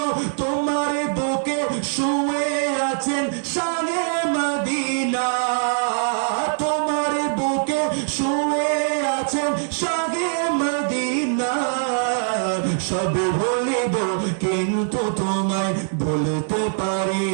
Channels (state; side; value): silent; left; digital silence